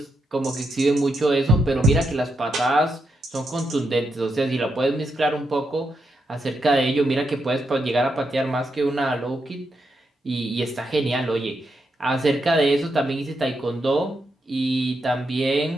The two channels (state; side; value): normal; both; correlation 0.83